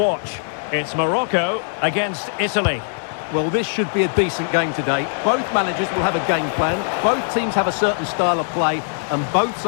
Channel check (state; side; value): silent; right; 65 dB below the other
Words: It's Morocco against Italy. Well, this should be a decent game today. Both managers will have a game plan, both teams have a certain style of play, and both